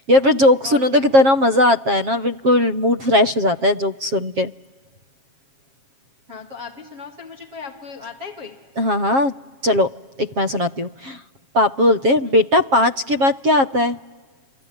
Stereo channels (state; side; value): late; left; 7.4 ms